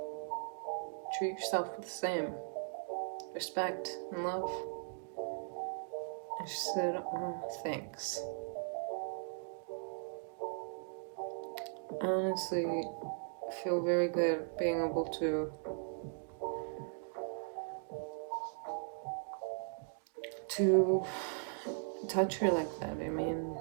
Treat yourself with the same respect and love. And she said, oh, thanks. I honestly feel very good being able to touch her like that. I mean,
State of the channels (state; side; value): silent; left; digital silence